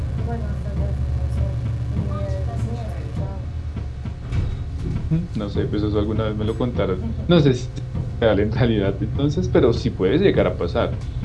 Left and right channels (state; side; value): identical; both; correlation 1.00